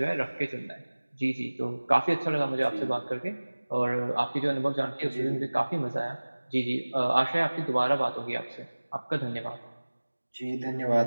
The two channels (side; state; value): both; inverted; correlation -1.00